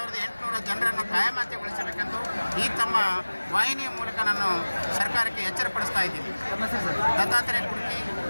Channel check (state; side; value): inverted; both; correlation -1.00